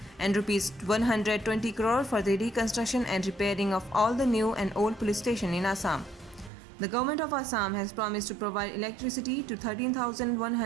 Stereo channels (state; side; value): drops out; left; at 6.5 s